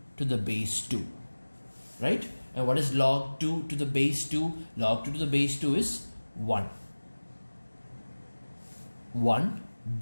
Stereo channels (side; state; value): both; inverted; correlation -1.00